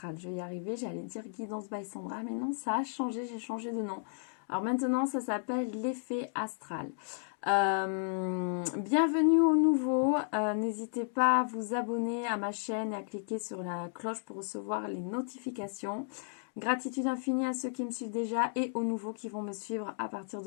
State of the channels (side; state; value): right; silent; digital silence